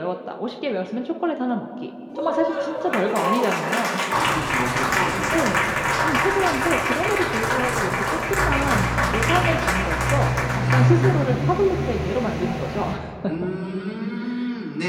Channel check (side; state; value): both; identical; correlation 1.00